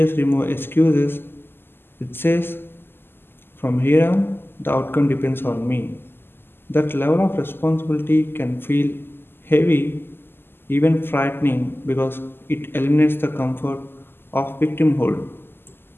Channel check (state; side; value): late; right; 0.11 ms